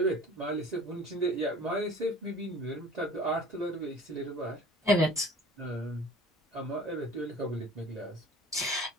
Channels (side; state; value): both; normal; correlation 0.45